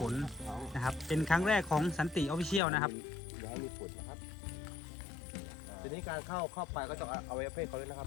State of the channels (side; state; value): right; drops out; at 2.6 s